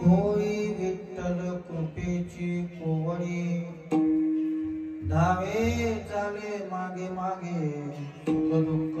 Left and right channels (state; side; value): identical; both; correlation 1.00